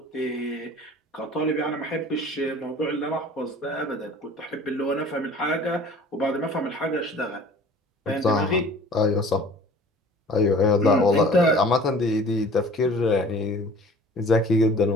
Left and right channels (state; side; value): normal; both; correlation 0.47